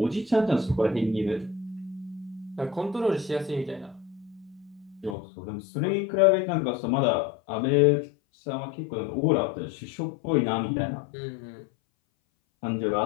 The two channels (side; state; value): right; drops out; at 5.2 s